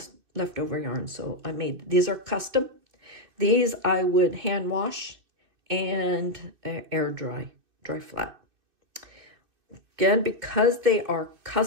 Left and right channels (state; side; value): late; left; 2.6 ms